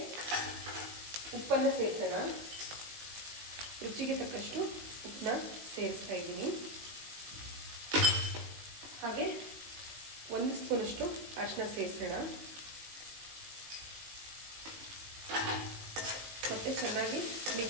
ಉಪ್ಪನ್ನು ಸೇರಿಸೋಣ. ರುಚಿಗೆ ತಕ್ಕಷ್ಟು ಉಪ್ಪನ್ನ ಸೇರಿಸ್ತಾ ಇದ್ದೀನಿ. ಹಾಗೆ 1 ಸ್ಪೂನಷ್ಟು ಅರಿಶಿನ ಸೇರಿಸೋಣ. ಮತ್ತೆ ಚೆನ್ನಾಗಿ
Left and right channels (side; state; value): left; late; 18 ms